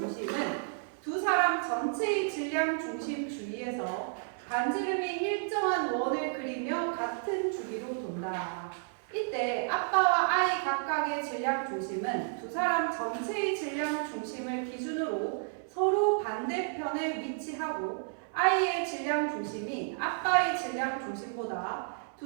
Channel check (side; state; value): left; silent; 56 dB below the other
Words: 두 사람 전체의 질량 중심 주위에서 반지름이 일정한 원을 그리며 같은 주기로 돈다. 이때 아빠와 아이 각각의 질량 중심은 두 사람 전체의 질량 중심을 기준으로 서로 반대편에 위치하고 아이의 질량 중심이 아빠의 질량 중심보다